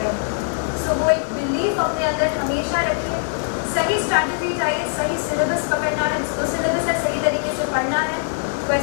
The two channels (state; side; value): silent; right; 65 dB below the other